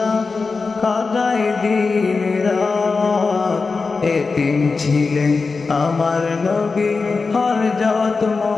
কাটাই দিন রাত। এতিম ছিলেন আমার নবী হযরত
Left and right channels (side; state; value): right; quieter; 4.4 dB